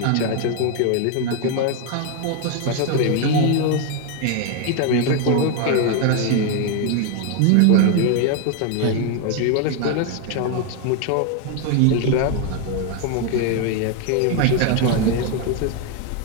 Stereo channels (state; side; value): different; both; correlation 0.00